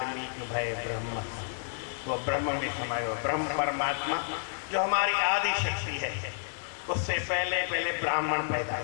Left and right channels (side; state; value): right; silent; 58 dB below the other